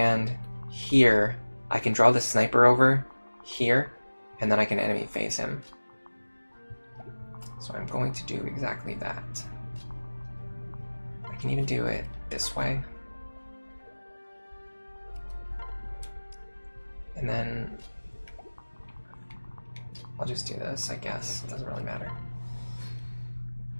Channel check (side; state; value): both; inverted; correlation -1.00